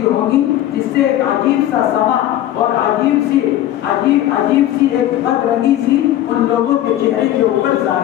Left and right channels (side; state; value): right; quieter; 13.0 dB